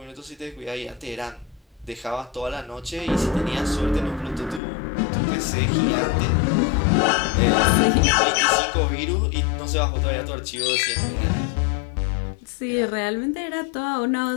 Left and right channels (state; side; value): drops out; right; at 4.6 s